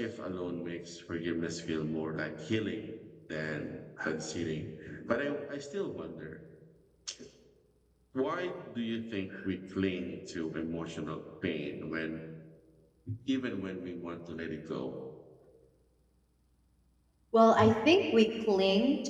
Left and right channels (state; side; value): identical; both; correlation 1.00